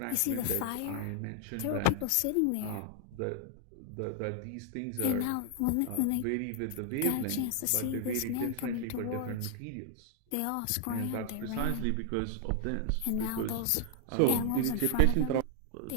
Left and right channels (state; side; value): different; both; correlation 0.00